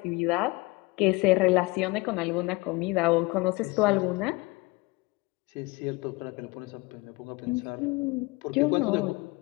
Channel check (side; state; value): right; quieter; 23.1 dB